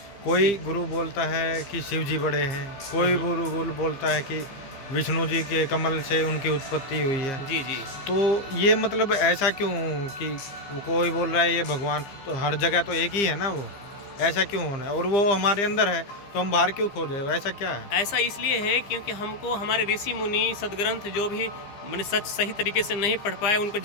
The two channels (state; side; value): late; right; 15 ms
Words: कोई गुरु बोलता है कि शिव जी बड़े हैं, कोई गुरु बोलता है कि विष्णु जी के कमल से उनकी उत्पत्ति हुई है। जी जी। तो ये मतलब ऐसा क्यों कि कोई बोल रहा है ये भगवान, तो हर जगह तो एक ही है ना, वो ऐसा क्यों होना है? और वो हमारे अंदर है तो हम बाहर क्यों खोजे? ऐसा क्या है? ऐसा इसलिए है क्योंकि हमको हमारे ऋषि मुनि सदग्रंथ जो भी मैंने सच सही तरीके से नहीं पढ़ पाए,